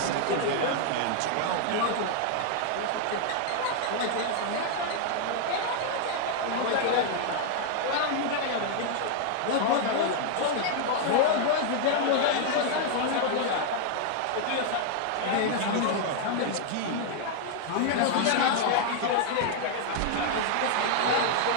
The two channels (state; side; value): different; both; correlation 0.00